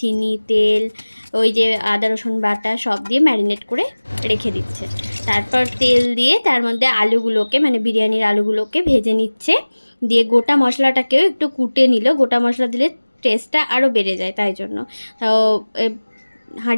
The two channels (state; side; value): inverted; both; correlation -1.00